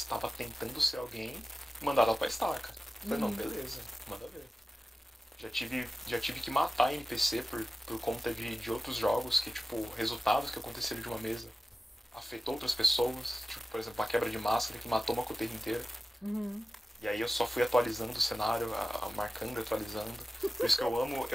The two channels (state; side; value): normal; both; correlation 0.95